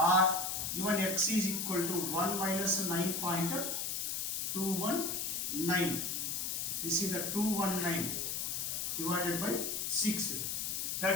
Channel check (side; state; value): left; noise; hiss, 1 dB below the sound